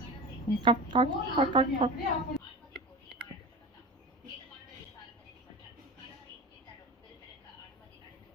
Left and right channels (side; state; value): both; normal; correlation 0.30